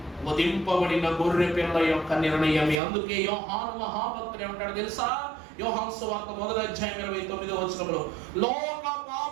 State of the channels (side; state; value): left; drops out; at 2.8 s